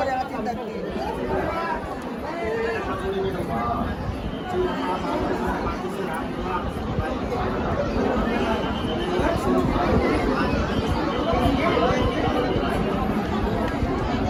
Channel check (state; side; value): identical; both; correlation 1.00